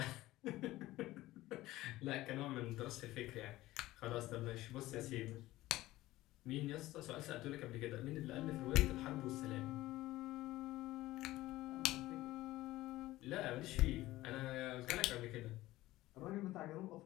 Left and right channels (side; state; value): right; quieter; 17.0 dB